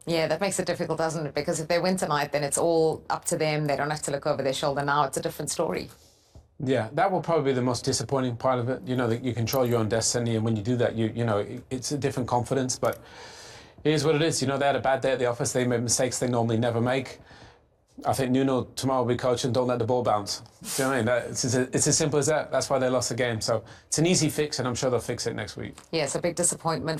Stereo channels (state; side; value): identical; both; correlation 1.00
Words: Yeah, that makes it difficult, doesn't it? Because if they win tonight, then it's all up to them. They don't have to look over their shoulder now. It's a different story. Yeah, that will probably be the most disappointing part of it. You know, that you control your own destiny, and when you do that, you know, it's a different confidence. But it is what it is. You know, they had a bad day at the office. They made mistakes they normally never make. I think Nuno tomorrow will be coaching, don't let the ball bounce. Do you know what I mean? It's as simple as that. That's why they lost the game. So it's an easy fix, and I'm sure they'll fix it next week. Yes, a big disappointment